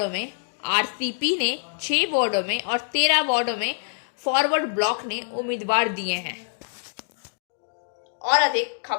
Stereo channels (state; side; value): silent; right; digital silence